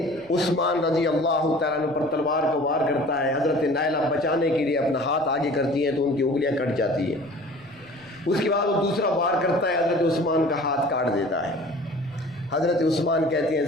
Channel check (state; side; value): noise; right; rumble, 28 dB below the sound